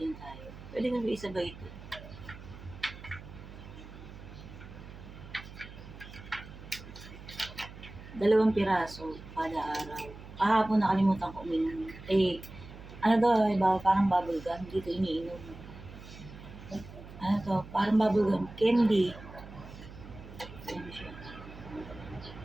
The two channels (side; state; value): right; noise; hum, 15 dB below the sound